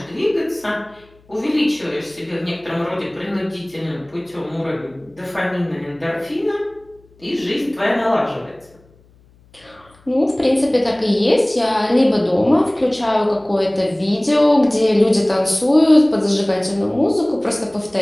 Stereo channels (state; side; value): noise; left; hum, 30 dB below the sound